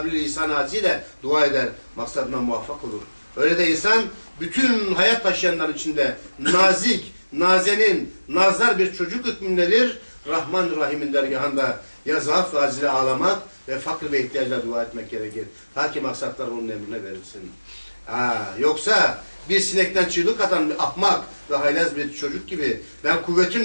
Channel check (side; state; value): both; inverted; correlation -1.00